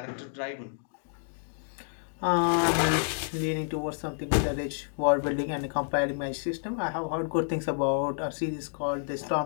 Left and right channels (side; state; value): right; silent; digital silence